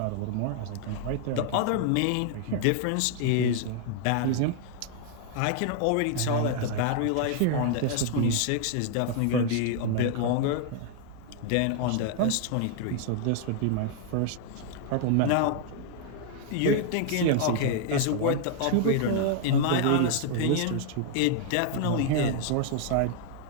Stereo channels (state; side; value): different; both; correlation 0.00